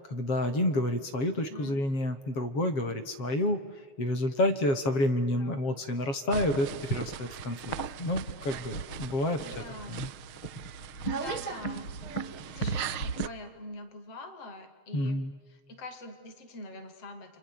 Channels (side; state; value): right; late; 7.4 ms